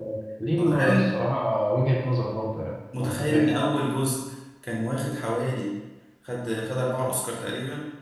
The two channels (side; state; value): both; identical; correlation 1.00